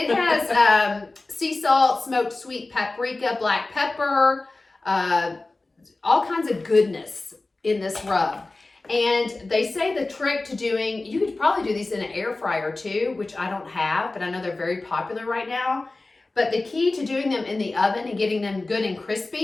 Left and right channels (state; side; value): quieter; right; 3.2 dB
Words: has sea salt, smoked sweet paprika, black pepper, all kinds of goodness in this rub. And they say the trick to doing, you could probably do these in an air fryer too, which I don't have, but I know they're very popular right now. But the key to doing them in the oven and getting them good and